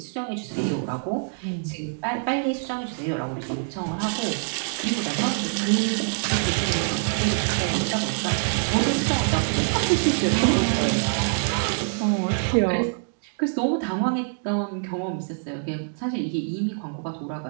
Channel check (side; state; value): left; silent; digital silence